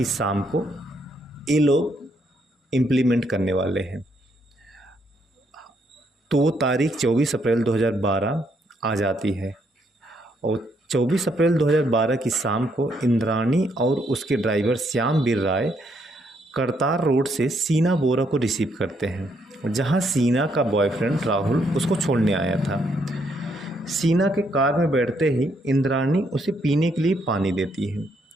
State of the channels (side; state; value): both; normal; correlation 0.73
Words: शाम को ये लोग इम्प्लीमेंट करने वाले हैं। तो वो तारीख 24 अप्रैल 2012 आ जाती है और 24 अप्रैल 2012 की शाम को इंद्राणी और उसके ड्राइवर श्यामवीर राय करतार रोड से सीना बोरा को रिसीव करते हैं, जहां सीना का बॉयफ्रेंड राहुल उसको छोड़ने आया था। सीना के कार में बैठते ही इंद्राणी उसे पीने के लिए पानी देती है,